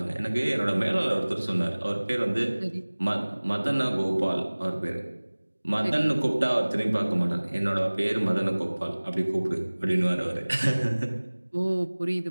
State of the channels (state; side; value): inverted; both; correlation -1.00